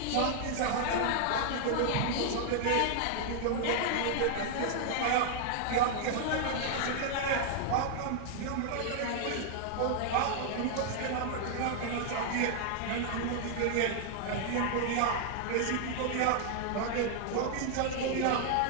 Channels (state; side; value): different; both; correlation 0.00